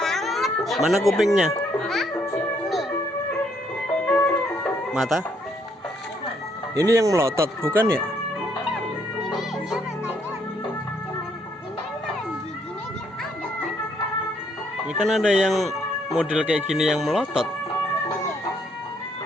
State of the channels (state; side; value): normal; both; correlation 0.70